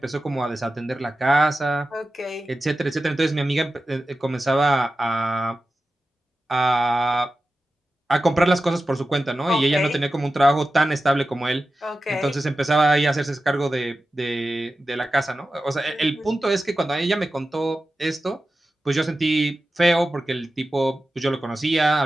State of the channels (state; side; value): normal; both; correlation 0.93